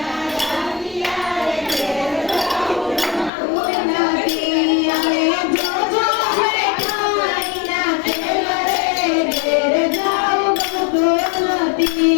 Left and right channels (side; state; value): right; drops out; at 3.3 s